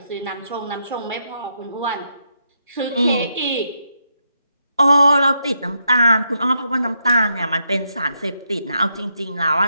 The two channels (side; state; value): both; inverted; correlation -0.80